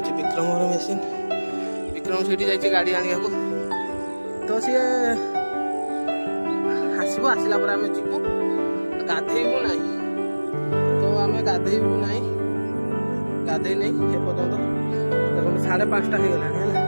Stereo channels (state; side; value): inverted; both; correlation -1.00